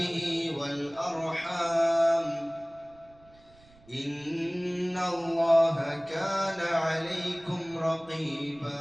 والأرحام، إن الله كان عليكم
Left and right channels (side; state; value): right; noise; rumble, 27 dB below the sound